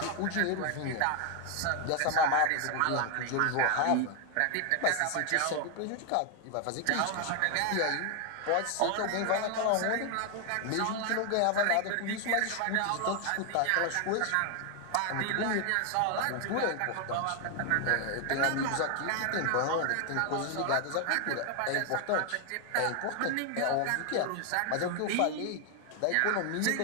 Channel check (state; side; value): different; both; correlation 0.00